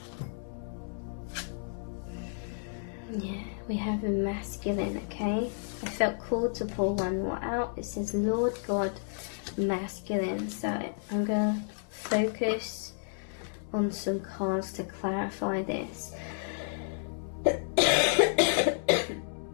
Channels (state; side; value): silent; right; 56 dB below the other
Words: Yeah, we have the masculine, okay? I felt called to pull one more out. It says Lord God Masculine. So I'm going to focus on some cards to clarify this.